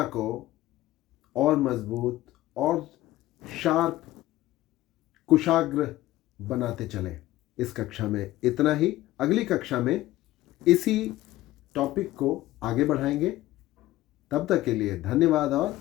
को और मजबूत और शार्प, कुशाग्र बनाते चलें। इस कक्षा में इतना ही। अगली कक्षा में इसी टॉपिक को आगे बढ़ाएंगे। तब तक के लिए धन्यवाद और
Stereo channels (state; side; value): quieter; right; 16.1 dB